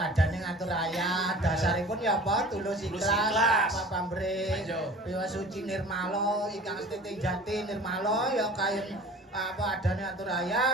ngatur raya, dasaripun ya apa tulus ikhlas, apa pamrih, piwa suci nirmala, ingkang setiting jati nirmala ya kayen apa adane atur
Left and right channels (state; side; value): normal; both; correlation 0.43